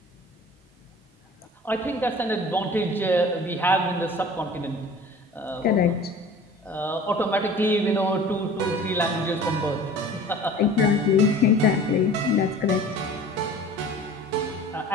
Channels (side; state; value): both; normal; correlation 0.43